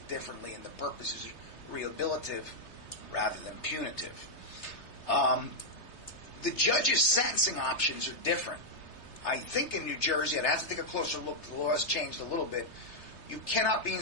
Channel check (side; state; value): right; late; 3.4 ms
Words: differently, and the purpose is rehabilitative rather than punitive. The judge's sentencing options are different. I think in New Jersey, I'd have to take a closer look. The law has changed a little bit. You cannot be